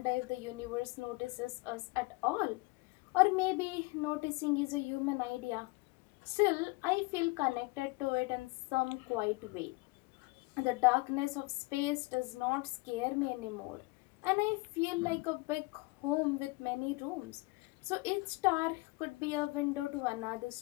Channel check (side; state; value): right; quieter; 24.9 dB